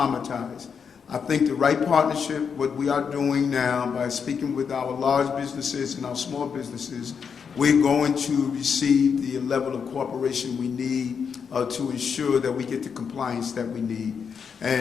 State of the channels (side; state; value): right; quieter; 6.5 dB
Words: I think the right partnership, what we are doing now by speaking with our large businesses and our small businesses, we're going to receive the level of cooperation we need to ensure that we get the compliance that we need.